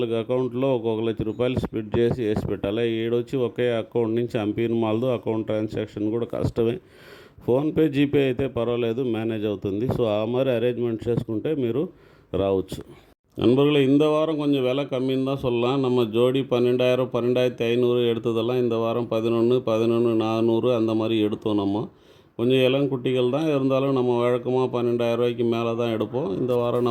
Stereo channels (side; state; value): both; identical; correlation 1.00